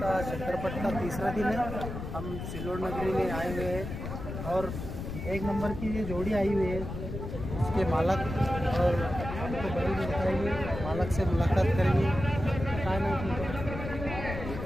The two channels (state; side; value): noise; left; rumble, 7 dB below the sound